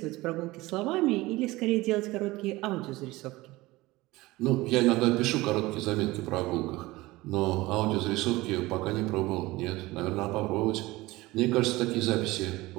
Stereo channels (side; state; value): left; quieter; 19.9 dB